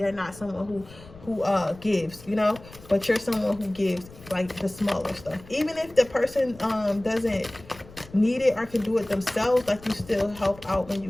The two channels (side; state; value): left; noise; rumble, 20 dB below the sound